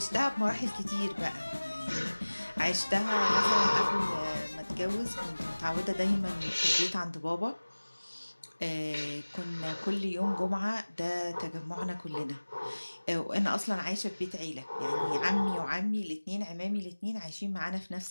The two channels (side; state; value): both; inverted; correlation -1.00